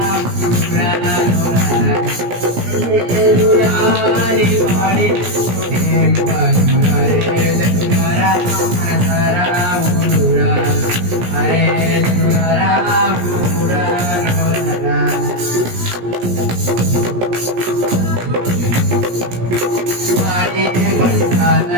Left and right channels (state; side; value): late; left; 17 ms